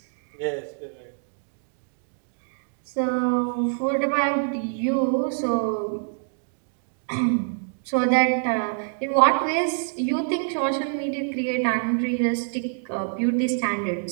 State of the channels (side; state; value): left; silent; digital silence